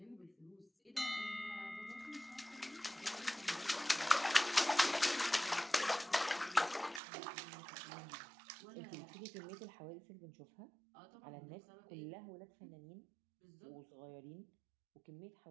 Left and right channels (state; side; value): drops out; left; at 7.0 s